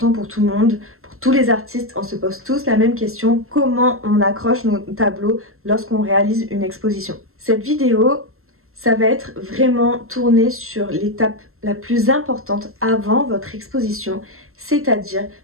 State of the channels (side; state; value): left; late; 0.62 ms